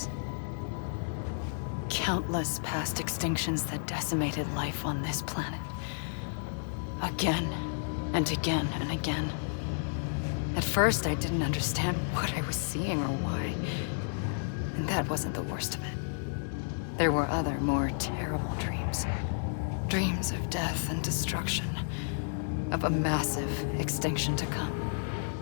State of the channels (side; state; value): right; silent; 57 dB below the other